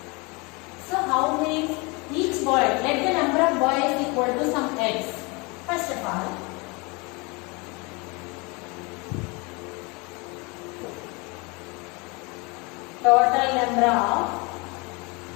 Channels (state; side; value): quieter; right; 28.0 dB